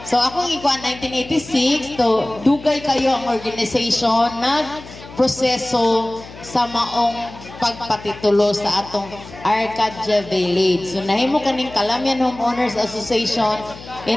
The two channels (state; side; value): noise; left; hum, 17 dB below the sound